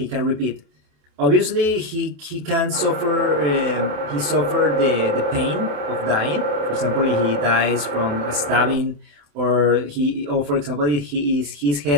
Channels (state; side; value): late; left; 28 ms